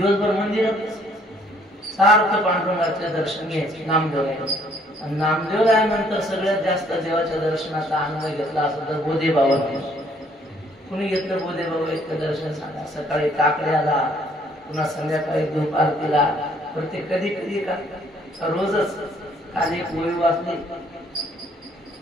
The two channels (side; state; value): both; normal; correlation 0.64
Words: मंदिरात सारखं पांडुरंगाचं दर्शन घ्यायचं. नामदेव आणि नामदेव रायानंतर सगळ्यात जास्त देवाच्या दर्शनाचा आनंद घेतला असं तर बोधे बाबा. कुणी घेतलं बोधे बाबा इतकं दर्शन सांगा. सकाळी काकड्याला, पुन्हा संध्याकाळी धूप आरतीला, प्रत्येक कधी कधी का रोजच. काल एक ओळी वाचली,